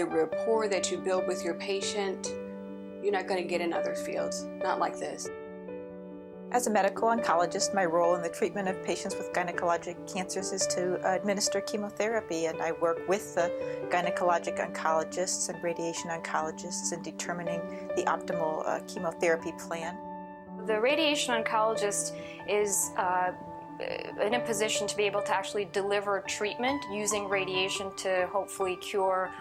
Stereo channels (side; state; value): both; identical; correlation 1.00